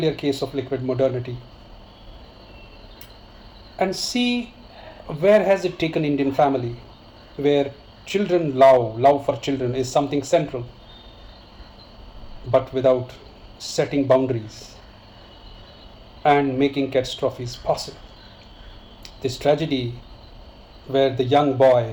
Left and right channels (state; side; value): identical; both; correlation 1.00